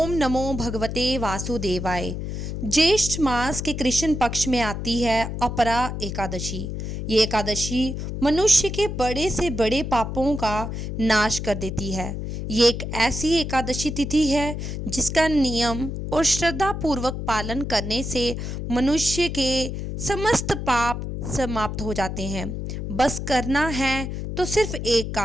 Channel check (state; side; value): noise; left; hum, 5 dB below the sound